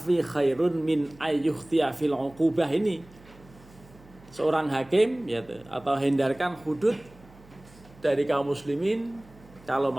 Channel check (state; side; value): noise; right; hum, 25 dB below the sound